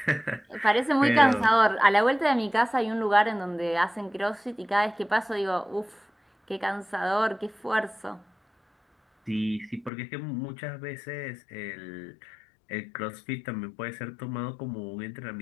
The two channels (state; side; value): drops out; right; at 9.9 s